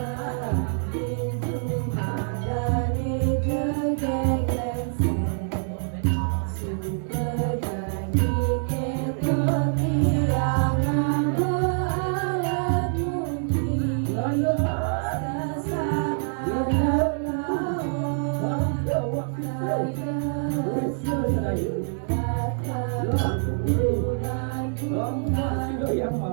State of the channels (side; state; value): left; silent; digital silence